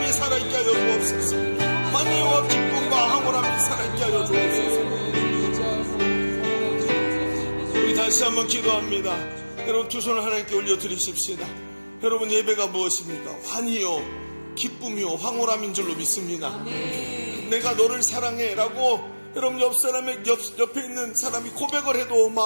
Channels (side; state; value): both; inverted; correlation -1.00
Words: 살아있게 하여 주옵소서. 환희와 기쁨과 황홀함이 살아있게 하여 주옵소서. 우리 다시 한번 기도합니다. 여러분 두 손을 하나님께 올려드리십시다. 여러분 예배가 무엇입니까? 환희요 기쁨이요 황홀함인 줄로 믿습니다. 내가 너를 사랑해 라고 여러분 옆에 있는 사람이 고백을 해도